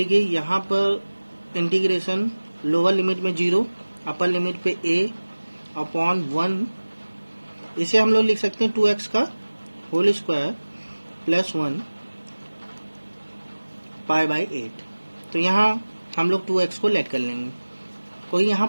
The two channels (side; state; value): both; inverted; correlation -1.00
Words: यहाँ पर इंटीग्रेशन लोअर लिमिट में 0, अपर लिमिट पे a अपॉन 1, इसे हम लोग लिख सकते हैं 2x का whole square plus 1 pi by 8। तो यहाँ हम लोग 2x को लेट कर लेंगे, कोई यहाँ